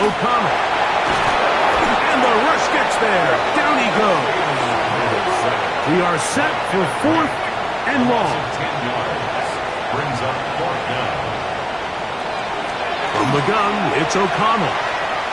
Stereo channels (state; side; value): identical; both; correlation 1.00